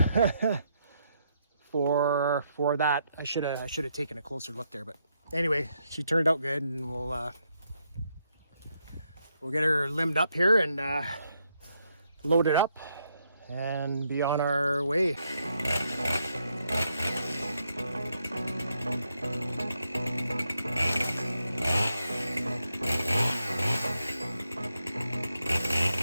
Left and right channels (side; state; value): both; inverted; correlation -0.79